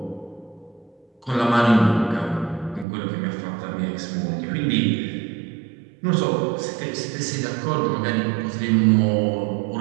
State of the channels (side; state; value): left; drops out; at 2.9 s